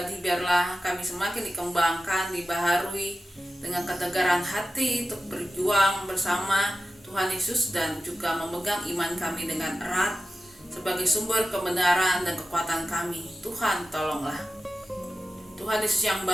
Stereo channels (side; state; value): both; normal; correlation 0.93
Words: Biarlah kami semakin dikembangkan, dibaharui dengan ketegaran hati untuk berjuang bersama Tuhan Yesus, dan juga memegang iman kami dengan erat sebagai sumber kebenaran dan kekuatan kami. Tuhan, tolonglah. Tuhan Yesus yang